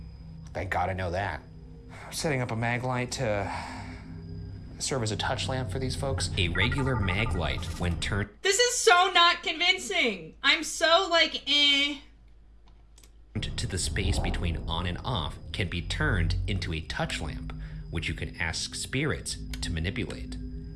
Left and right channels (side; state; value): both; identical; correlation 1.00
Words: Thank God I know that. Setting up a mag light to serve as a touch lamp for these folks. A regular mag light, when turned This is so not convincing. I'm so like, to the space between on and off can be turned into a touch lamp, which you can ask spirits to manipulate.